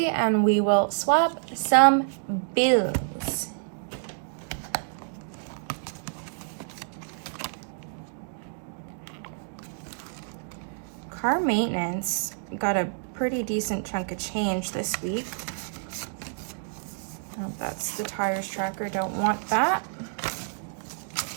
and we will swap some bills. Car maintenance got a pretty decent chunk of change this week. Oh, that's the tires tracker, don't want that.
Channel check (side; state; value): left; silent; digital silence